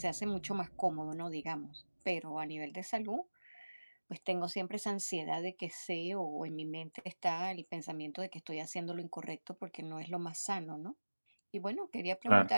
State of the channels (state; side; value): inverted; both; correlation -1.00